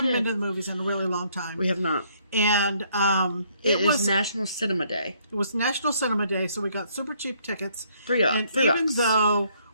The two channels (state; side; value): inverted; both; correlation -0.67